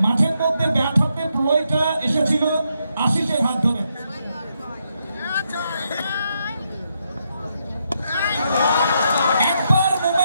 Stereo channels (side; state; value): both; inverted; correlation -0.80